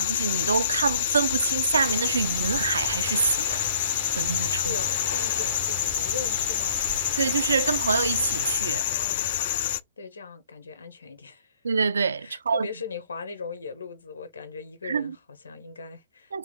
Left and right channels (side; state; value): both; inverted; correlation -0.57